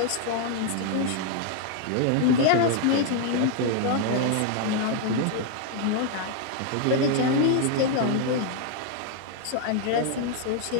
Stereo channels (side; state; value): both; different; correlation 0.00